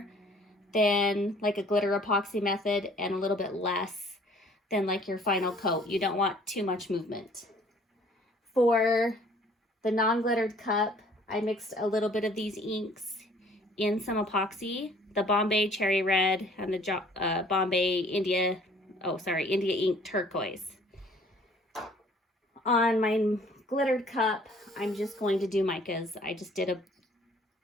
than like a glitter epoxy method and a little bit less than like your final coat. You don't want too much movement. For the non-glittered cup, I mixed a little bit of these inks in some epoxy, the Bombay Cherry Red and the Bombay India Ink Turquoise. On my glittered cup, I'm just going to do micas. I just did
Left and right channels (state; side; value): normal; both; correlation 0.56